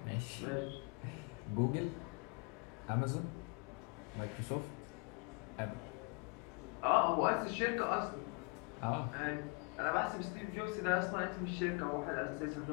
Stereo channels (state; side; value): quieter; right; 30.7 dB